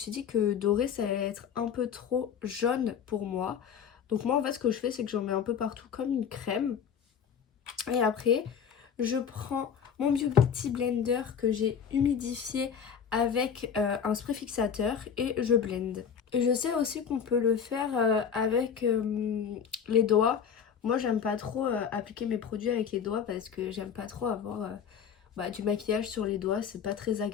dit que doré ça allait être un peu trop jaune pour moi. Donc moi en fait ce que je fais c'est que j'en mets un peu partout comme une crème. Et après je prends mon Beauty Blender que j'ai humidifié avec un spray fixateur et je blende. Et je sais aussi qu'on peut le faire avec les doigts. Moi j'aime pas trop appliquer mes produits avec les doigts parce que j'aime pas trop avoir du maquillage sur les doigts, c'est pas très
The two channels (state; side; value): quieter; right; 7.5 dB